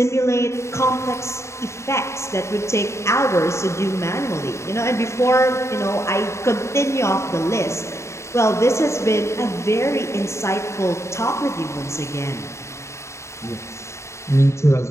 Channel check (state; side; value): late; right; 0.14 ms